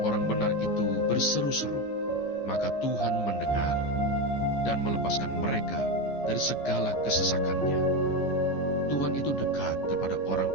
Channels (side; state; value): right; late; 14 ms